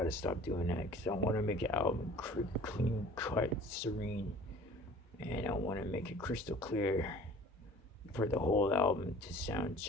stop doing that because I want to make an album clean cut, serene, and I want to make it crystal clear for the whole album to sound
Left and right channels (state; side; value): normal; both; correlation 0.47